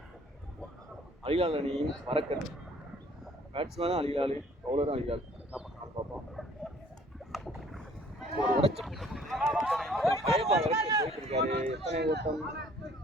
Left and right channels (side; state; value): both; normal; correlation 0.57